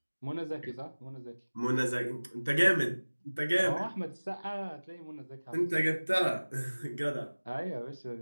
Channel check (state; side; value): inverted; both; correlation -1.00